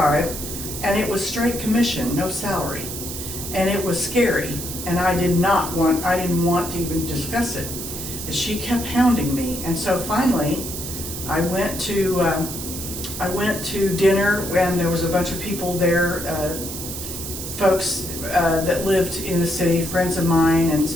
And it was straight commission, no salary. And it was scary. And I didn't want to even discuss it. She kept hounding me. And so finally, I went to dinner, and there was a bunch of people there, folks that lived in the city, friends of mine, and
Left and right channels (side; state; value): right; noise; hiss, 7 dB below the sound